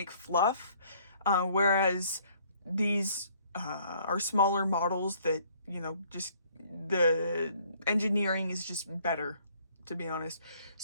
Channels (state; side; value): inverted; both; correlation -0.61